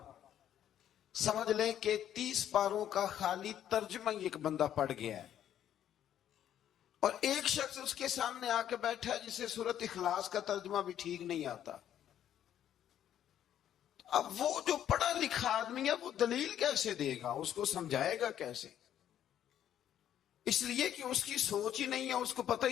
سمجھ لیں کہ 30 پاروں کا خالی ترجمہ ایک بندہ پڑھ گیا ہے، اور ایک شخص اس کے سامنے آ کے بیٹھا ہے جسے سورۃ اخلاص کا ترجمہ بھی ٹھیک نہیں آتا۔ اب وہ جو پڑھا لکھا آدمی ہے وہ دلیل کیسے دے گا، اس کو سمجھائے گا کیسے؟ اس لیے کہ اس کی سوچ ہی نہیں ہے، اس کو پتہ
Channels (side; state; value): right; quieter; 10.7 dB